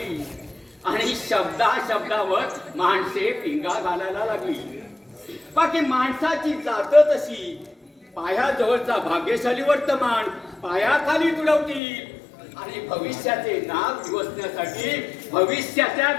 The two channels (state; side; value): drops out; right; at 11.8 s